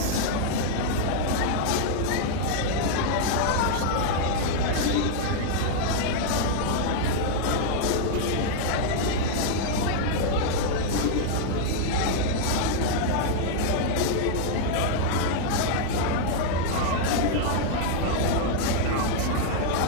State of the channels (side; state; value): both; different; correlation 0.00